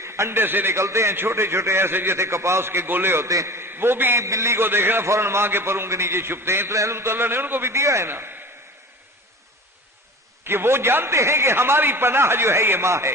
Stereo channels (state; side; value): normal; both; correlation 0.37